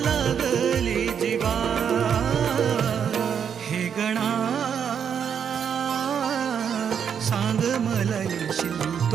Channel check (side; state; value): left; quieter; 7.7 dB